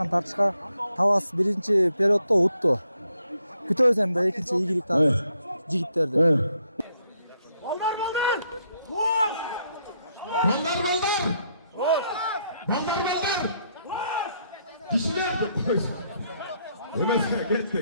tartishga Tavas birinchi periodda o'tdi. Kutamiz endi ikkinchi yigilik yigitlarni. Ballar! Kişiler de koş. Yemezse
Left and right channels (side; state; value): both; inverted; correlation -0.74